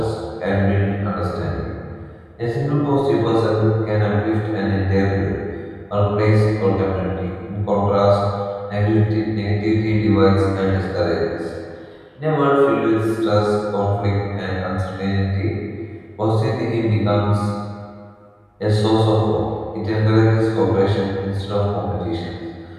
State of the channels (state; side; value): identical; both; correlation 1.00